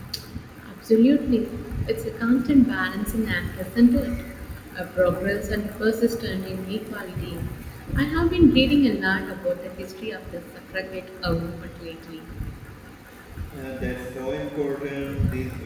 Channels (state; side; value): identical; both; correlation 1.00